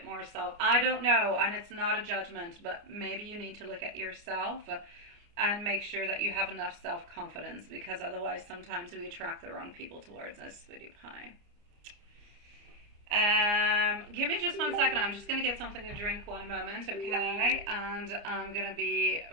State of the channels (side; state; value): left; late; 29 ms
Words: more self. I don't know, and it's not a judgment, but maybe you need to look at yourself and make sure that you have enough self-confidence, because otherwise sometimes we attract the wrong people towards us, sweetie pie. Give me just 1 second. I'm just going to get something to drink 1 moment, okay? And I'm going to be